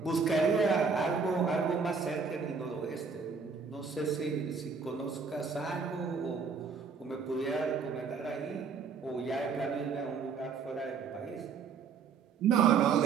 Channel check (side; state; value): left; quieter; 5.5 dB